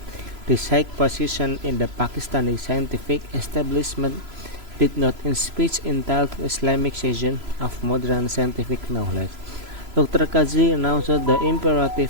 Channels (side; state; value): left; late; 3.0 ms